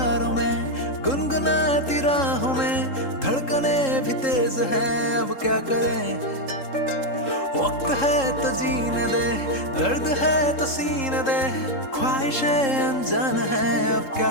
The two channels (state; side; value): late; right; 3.7 ms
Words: में, गुनगुनाती राहों में, धड़कने भी तेज है, अब क्या करें। वक्त है तो जीने दे, दर्द है तो सीने दे, ख्वाहिशें अनजान है, अब